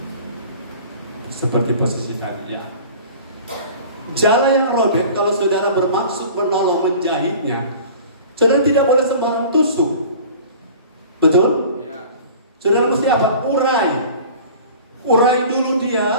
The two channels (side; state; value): both; inverted; correlation -0.43